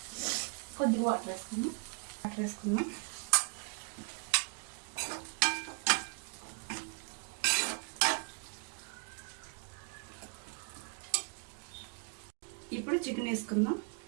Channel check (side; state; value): left; quieter; 33.9 dB